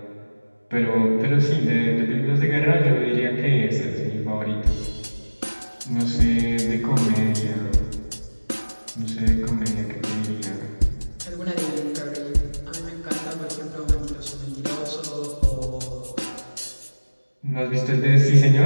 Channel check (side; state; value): both; inverted; correlation -1.00